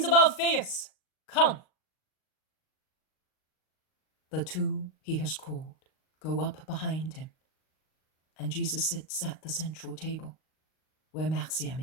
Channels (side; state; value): right; late; 38 ms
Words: of Alphaeus, come. The two he has called go up behind him, and Jesus sits at the central table where Marciam